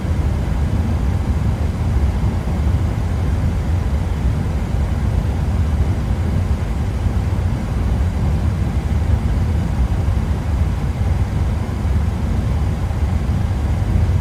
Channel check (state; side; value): identical; both; correlation 1.00